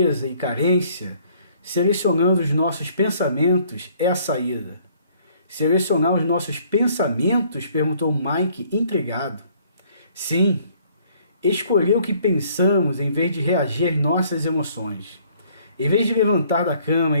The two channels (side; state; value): both; inverted; correlation -0.61